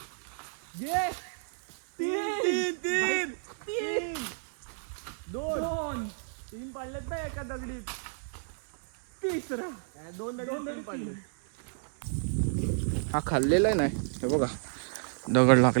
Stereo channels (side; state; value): left; silent; 57 dB below the other